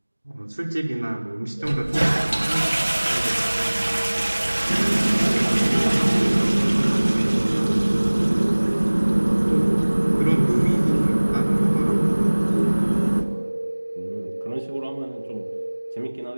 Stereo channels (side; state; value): both; inverted; correlation -1.00